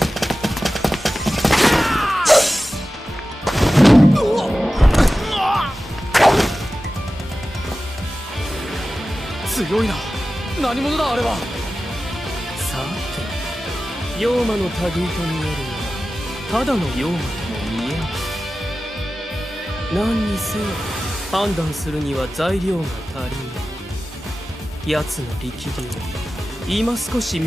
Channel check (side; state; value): both; normal; correlation 0.95